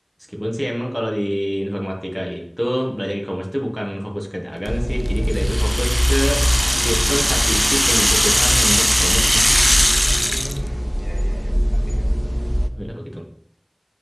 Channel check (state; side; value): identical; both; correlation 1.00